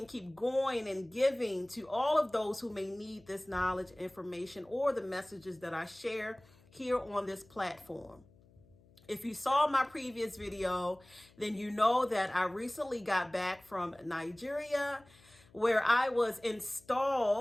keep going and giving to all of those who may need this knowledge, information, or the messages that I share here on this platform. If you saw my previous video, then you know that I recently got back from Nigeria, where I was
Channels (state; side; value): noise; left; hum, 28 dB below the sound